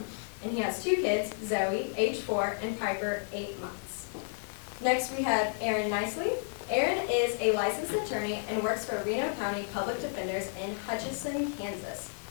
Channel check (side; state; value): right; silent; digital silence